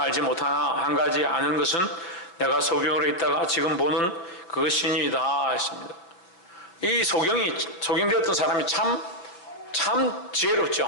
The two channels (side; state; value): right; late; 5.8 ms